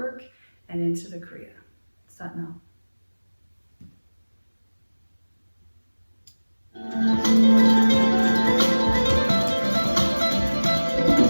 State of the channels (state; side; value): inverted; both; correlation -1.00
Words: and into the kriya. Sat Nam.